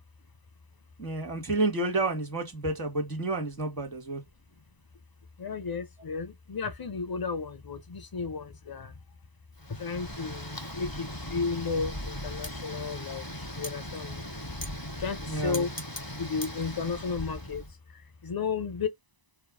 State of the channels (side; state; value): right; late; 1.0 ms